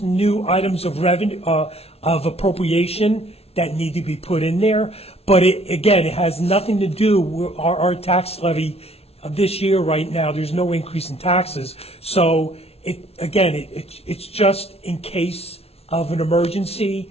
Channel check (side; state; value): right; late; 0.30 ms